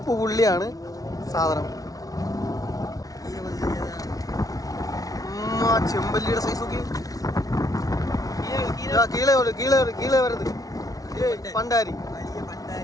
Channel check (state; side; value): late; right; 0.18 ms